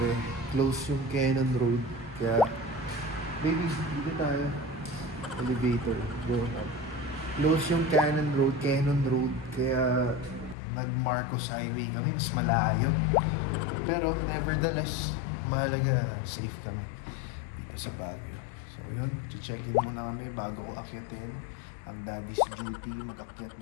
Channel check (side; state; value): right; drops out; at 10.6 s